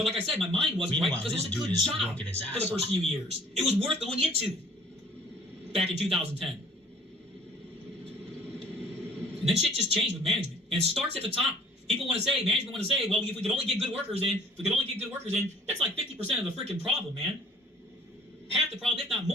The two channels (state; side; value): normal; both; correlation 0.53